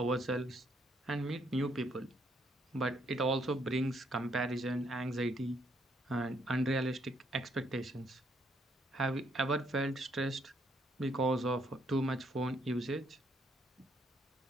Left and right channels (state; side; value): normal; both; correlation 0.71